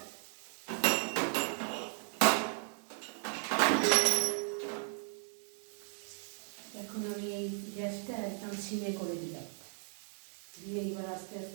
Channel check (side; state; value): left; silent; 54 dB below the other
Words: এখন আমি এই গ্যাসটা একদম সিমে করে দিলাম, দিয়ে এবার আস্তে